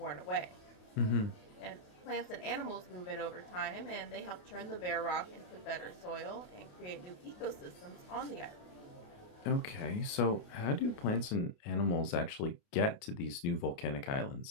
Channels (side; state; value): right; late; 29 ms